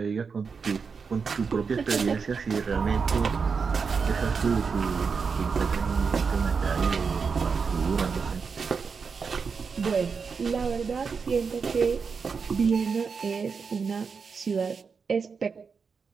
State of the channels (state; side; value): quieter; left; 5.5 dB